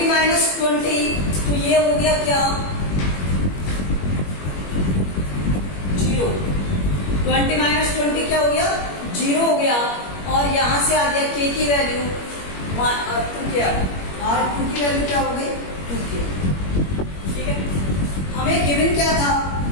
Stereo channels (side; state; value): right; late; 21 ms